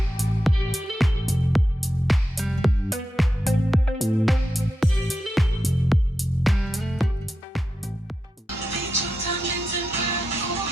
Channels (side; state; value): both; normal; correlation 0.88